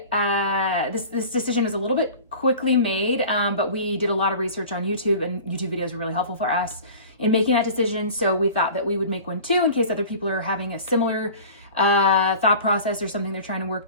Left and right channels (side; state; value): both; inverted; correlation -0.40